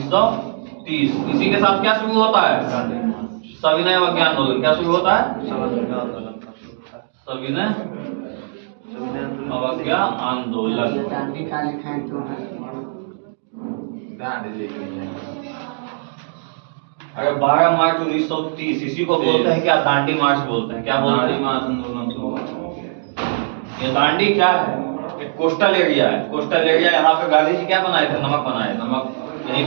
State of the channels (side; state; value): left; silent; digital silence